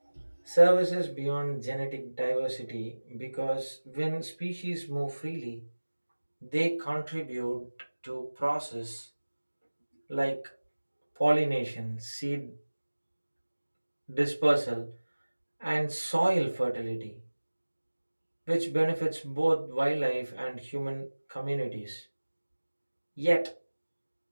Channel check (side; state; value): both; inverted; correlation -1.00